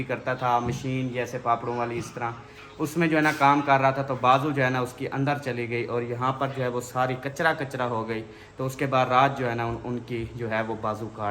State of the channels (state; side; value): identical; both; correlation 1.00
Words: करता था, मशीन जैसे पापड़ों वाली इस तरह, उसमें जो है ना काम कर रहा था, तो बाजू जो है ना उसकी अंदर चली गई और यहाँ पर जो है वो सारी कचरा कचरा हो गई। तो उसके बाद रात जो है ना उनकी जो है वो बाजू